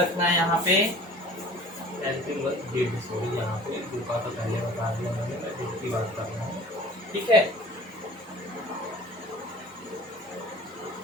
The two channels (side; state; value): both; normal; correlation 0.45